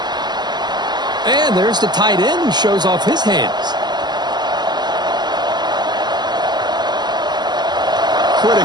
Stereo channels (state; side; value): late; left; 0.21 ms